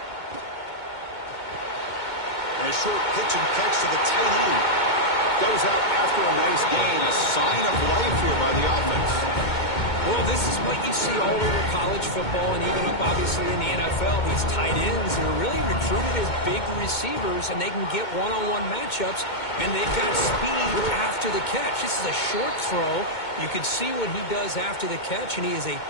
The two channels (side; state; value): right; late; 2.2 ms